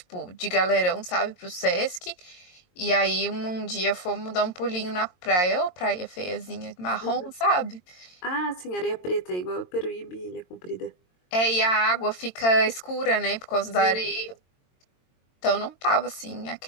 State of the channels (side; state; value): right; late; 22 ms